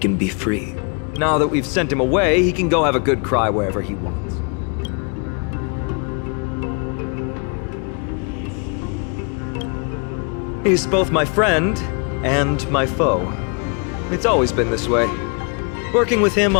be free. Now that we've sent him away, he can go have a good cry wherever he wants. He's both my friend and my foe. It's always been this way. Working with him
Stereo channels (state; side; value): quieter; right; 37.1 dB